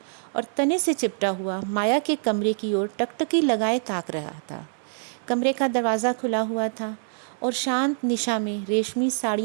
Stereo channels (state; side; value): silent; left; digital silence